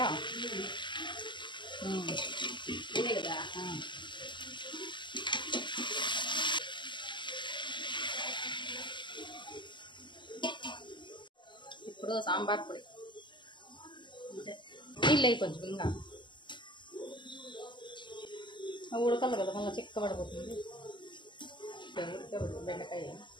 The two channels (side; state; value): right; late; 0.22 ms